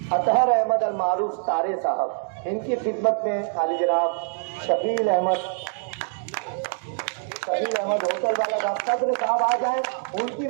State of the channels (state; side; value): silent; left; digital silence